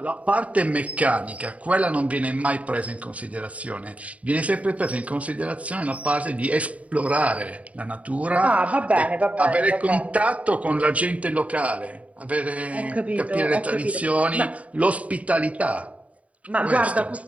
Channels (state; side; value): late; left; 0.067 ms